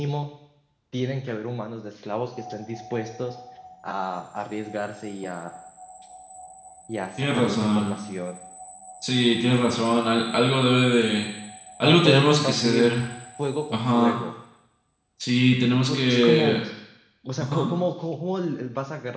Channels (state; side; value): identical; both; correlation 1.00